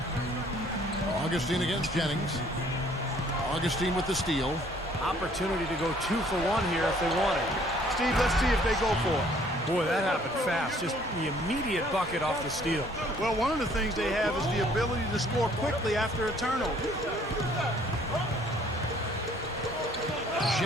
Augustine against Jennings. Augustine with the steal. Opportunity to go 2 for 1 here if they want it. Steve, let's see if they go for it. Boy, that happened fast. Just the immediate bucket off the steal. Well, one of the things they have is the ability to score quickly after a turnover.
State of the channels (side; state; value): both; normal; correlation 0.59